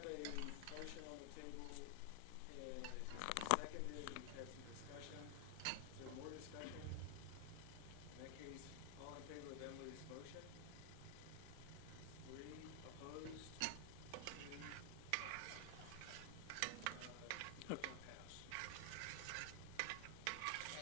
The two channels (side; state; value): both; different; correlation 0.00